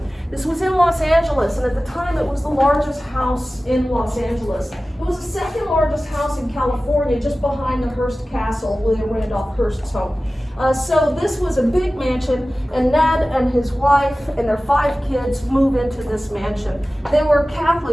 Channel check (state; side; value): normal; both; correlation 0.96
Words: This was in Los Angeles, and at the time it was the largest house in Los Angeles. It was the second largest house in California, just behind the Hearst Castle, William Randolph Hearst's home. So this was a big mansion, and Ned and his wife and their 5 kids move into this mansion. They were